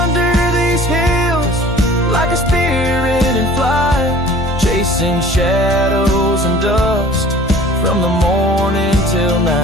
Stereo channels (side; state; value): both; normal; correlation 0.48